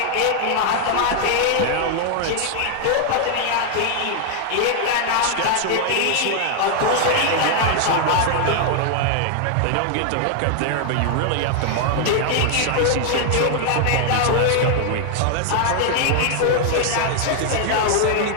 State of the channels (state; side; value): different; both; correlation 0.00